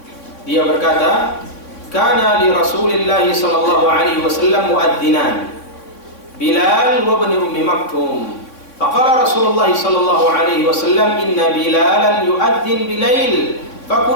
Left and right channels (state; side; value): late; right; 3.5 ms